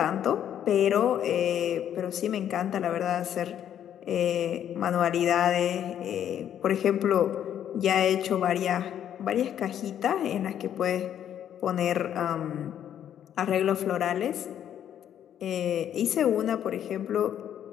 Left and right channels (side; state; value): right; quieter; 10.0 dB